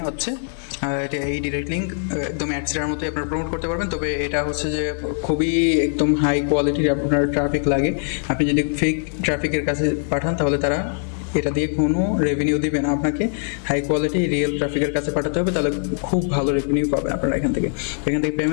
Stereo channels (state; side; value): silent; right; digital silence